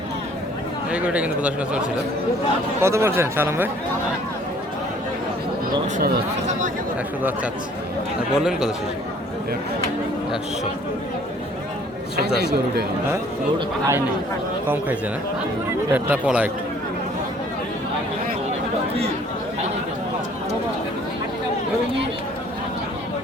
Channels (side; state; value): both; normal; correlation 0.56